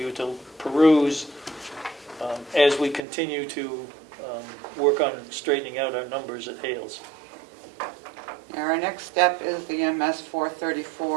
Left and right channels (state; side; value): drops out; left; at 3.0 s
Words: to peruse as we continue to work on straightening out our numbers at Hales. Our next step is the MS